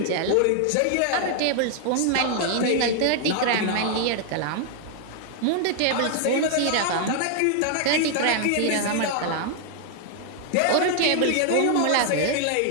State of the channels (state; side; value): different; both; correlation 0.00